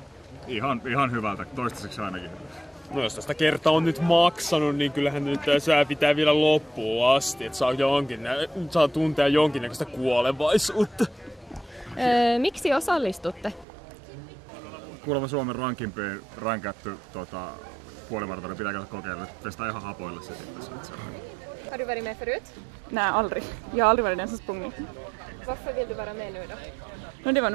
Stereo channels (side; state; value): left; drops out; at 13.7 s